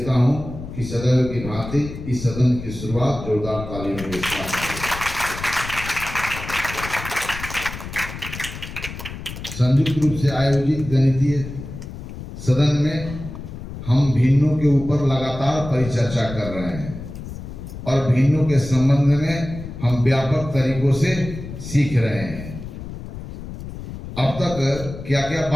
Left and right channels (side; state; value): left; noise; rumble, 10 dB below the sound